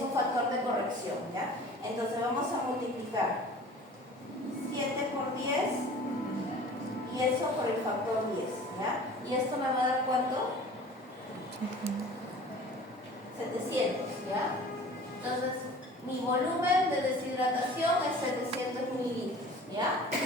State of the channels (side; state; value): both; normal; correlation 0.44